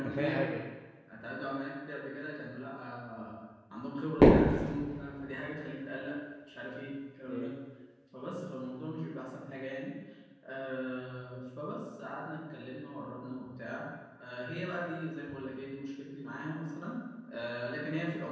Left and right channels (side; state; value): both; identical; correlation 1.00